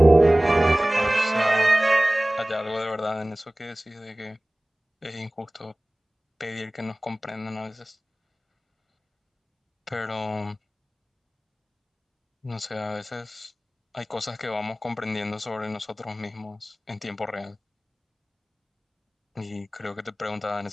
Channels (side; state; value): both; normal; correlation 0.98